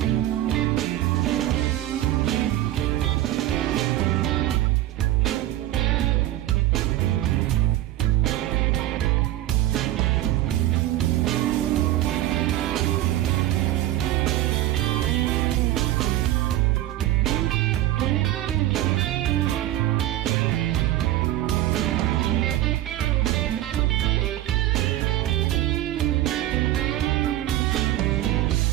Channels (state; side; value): quieter; left; 14.5 dB